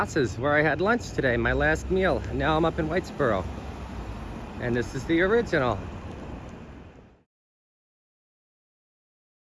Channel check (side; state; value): both; identical; correlation 1.00